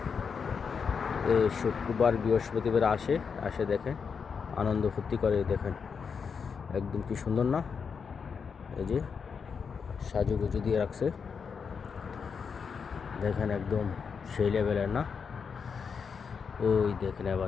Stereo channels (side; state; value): right; quieter; 6.1 dB